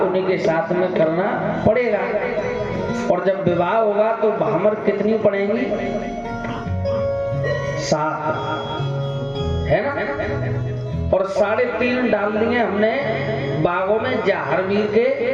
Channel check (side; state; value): both; identical; correlation 1.00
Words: उन्हीं के साथ में करना पड़ेगा, और जब विवाह होगा तो भामर कितनी पड़ेंगी? 7 है ना? और 3.5 डाल दिए हमने बागों में जहारवीर के